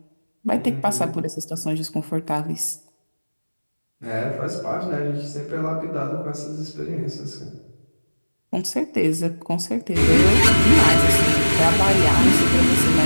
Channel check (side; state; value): both; inverted; correlation -1.00